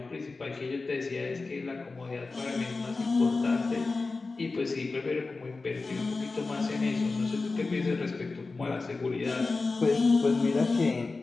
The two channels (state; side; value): quieter; right; 3.8 dB